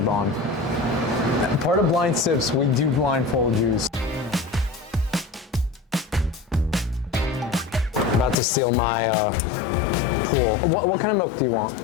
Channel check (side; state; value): right; drops out; at 8.3 s